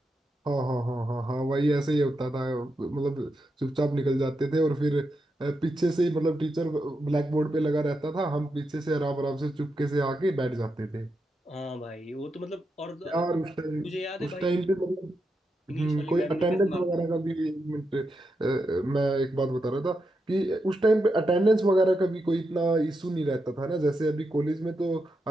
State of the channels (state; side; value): normal; both; correlation 0.85